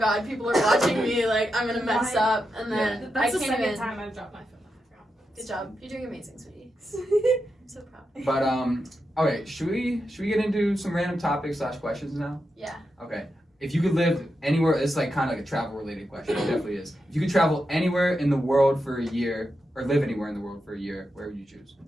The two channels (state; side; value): normal; both; correlation 0.87